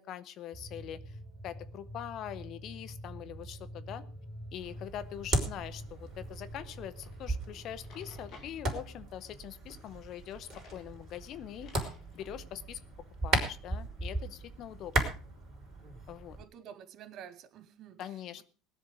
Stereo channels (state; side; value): normal; both; correlation 0.59